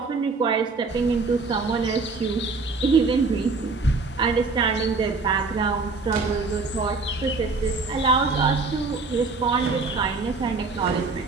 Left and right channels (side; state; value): left; quieter; 4.0 dB